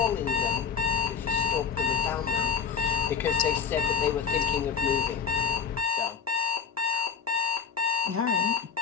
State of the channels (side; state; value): right; quieter; 6.5 dB